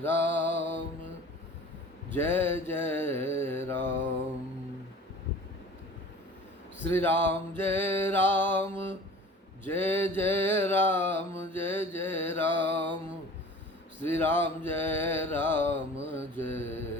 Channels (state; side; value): normal; both; correlation 0.43